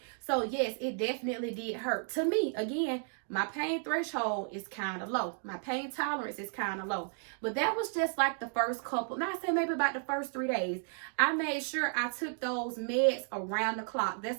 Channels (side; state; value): left; silent; 56 dB below the other